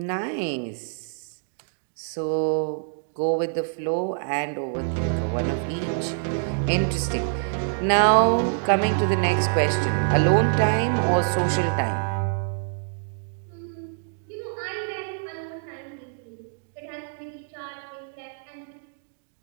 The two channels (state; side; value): silent; left; 61 dB below the other